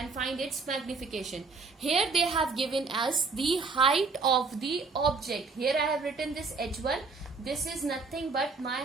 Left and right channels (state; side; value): quieter; left; 4.4 dB